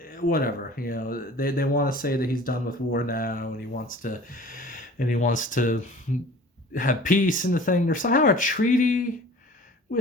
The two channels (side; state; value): both; normal; correlation 0.45